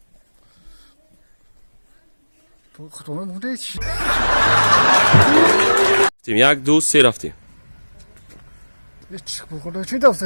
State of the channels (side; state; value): both; inverted; correlation -1.00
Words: bu kadar çiğ. یک دو سه رفتیم. hiç bu kadar çiğ de